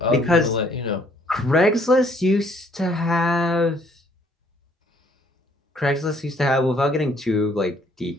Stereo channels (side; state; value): both; normal; correlation 0.63